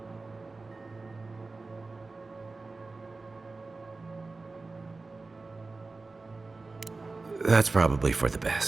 That's probably for the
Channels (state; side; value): quieter; left; 3.7 dB